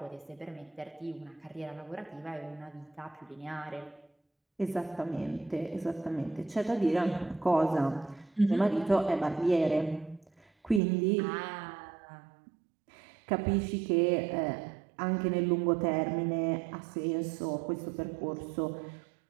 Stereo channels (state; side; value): drops out; left; at 10.8 s